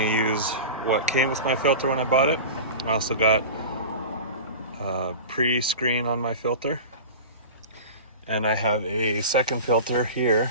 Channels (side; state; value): both; inverted; correlation -0.32